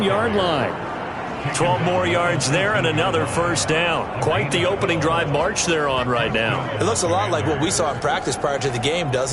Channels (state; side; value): identical; both; correlation 1.00